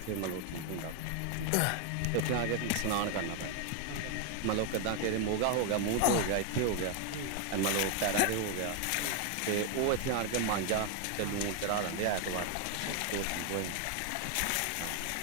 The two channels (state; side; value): different; both; correlation 0.01